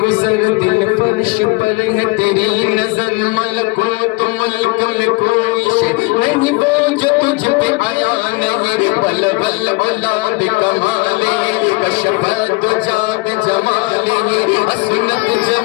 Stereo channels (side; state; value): right; quieter; 25.1 dB